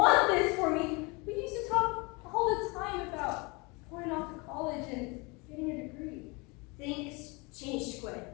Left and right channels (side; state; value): right; quieter; 27.9 dB